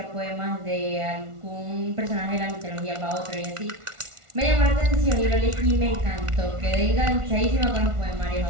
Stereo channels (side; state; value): left; late; 1.4 ms